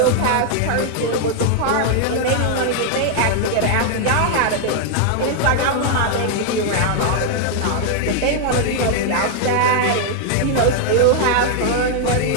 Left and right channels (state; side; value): different; both; correlation 0.00